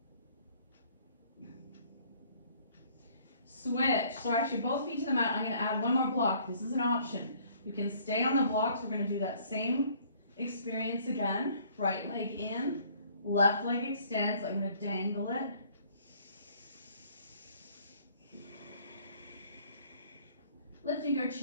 Switch. So actually both feet to the mat. I'm going to add one more block. This is an option. You can stay on the blocks. We're going to do that same experience again. Right leg in, left leg extends. I'm going to dangle it. Lifting your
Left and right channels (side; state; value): both; inverted; correlation -0.59